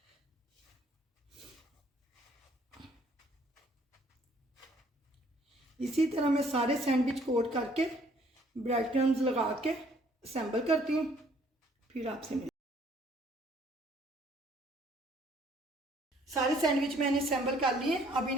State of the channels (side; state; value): both; normal; correlation 0.61